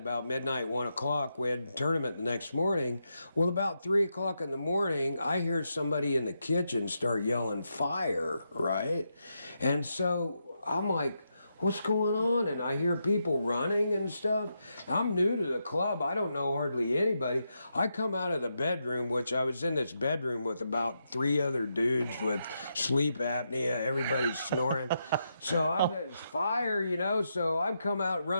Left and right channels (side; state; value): both; inverted; correlation -0.83